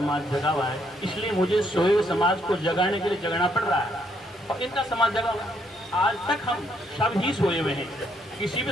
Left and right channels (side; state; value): both; normal; correlation 0.72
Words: जगा हुआ है, इसलिए मुझे सोए हुए समाज को जगाने के लिए जगना पड़ रहा है और इनका समाज जगा हुआ है। आज तक हम सब ही सोए हुए हैं। किसी